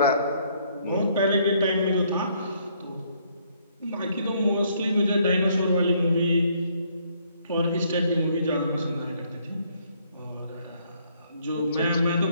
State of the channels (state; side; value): inverted; both; correlation -0.67